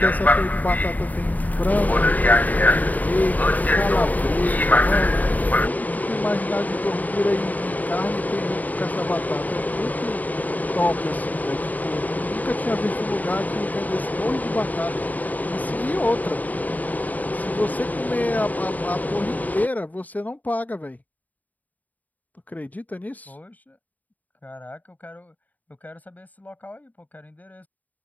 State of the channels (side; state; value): right; late; 0.078 ms